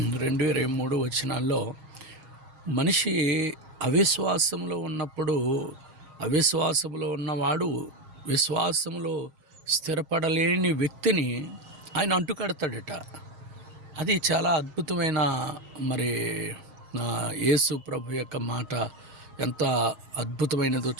వచనాల్లో మనిషి అవిశ్వాసంలో ఉన్నప్పుడు అవిశ్వాసంలో ఉన్నవాడు విశ్వాసంలో స్థిరపడలేని వ్యక్తిని ఆయన అంటుకడతాడట. అది చాలా అద్భుతమైన యేసు ప్రభు యొక్క మాట ఎంత అద్భుతమైనదో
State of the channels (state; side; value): late; left; 7.4 ms